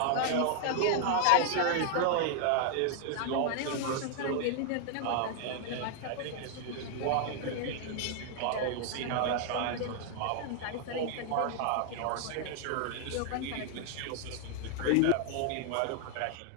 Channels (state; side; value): different; both; correlation 0.00